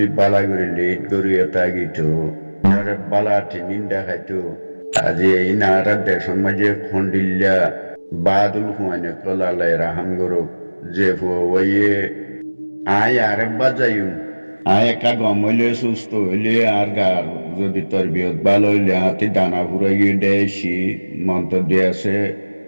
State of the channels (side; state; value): both; inverted; correlation -1.00